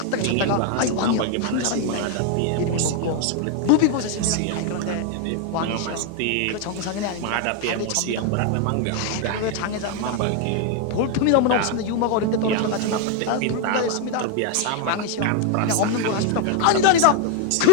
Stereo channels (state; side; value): different; both; correlation 0.01